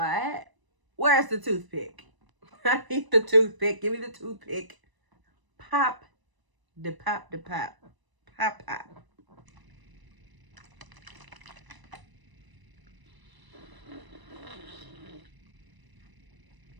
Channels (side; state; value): left; late; 1.0 ms